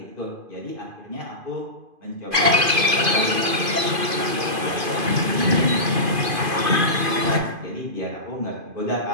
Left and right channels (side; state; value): left; late; 2.5 ms